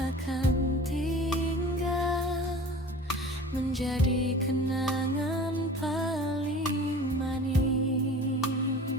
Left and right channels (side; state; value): both; normal; correlation 0.41